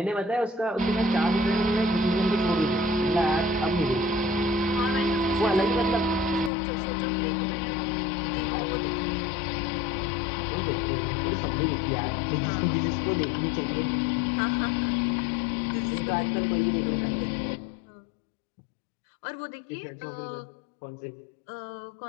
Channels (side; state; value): right; drops out; at 6.5 s